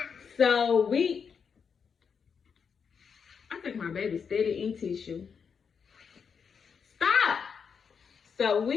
I think my baby's steady in tissue. Stop. So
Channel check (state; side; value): quieter; right; 6.4 dB